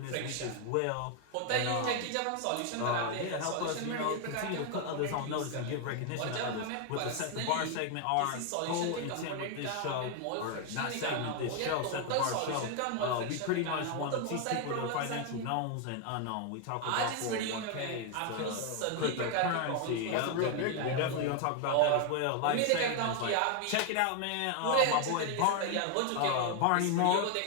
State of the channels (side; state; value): both; different; correlation 0.01